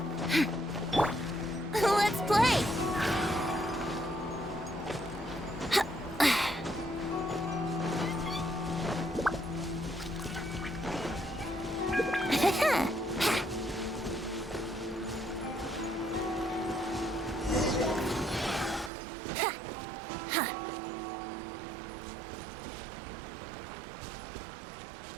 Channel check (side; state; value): left; drops out; at 18.9 s